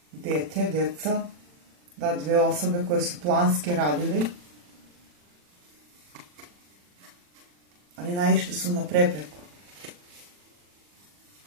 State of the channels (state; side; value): late; left; 40 ms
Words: Djeca. Da, dve osobe koje su planski radili. Ali naišli su na prepreku.